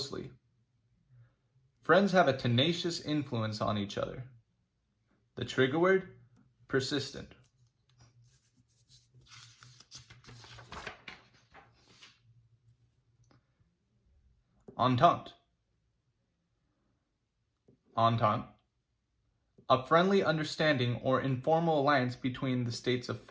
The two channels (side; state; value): both; identical; correlation 1.00